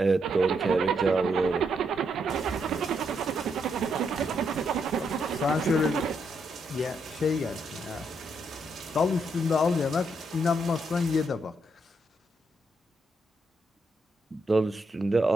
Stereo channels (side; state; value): both; normal; correlation 0.78